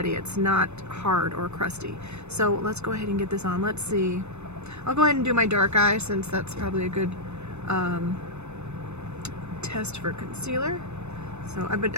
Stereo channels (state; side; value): late; left; 0.81 ms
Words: It's not hard or crusty. So let's go ahead and get this on. Let's see. I'll go ahead and do my dark eye since that's probably a good test for concealer. So